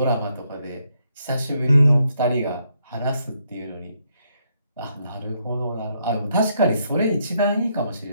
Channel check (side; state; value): both; inverted; correlation -0.75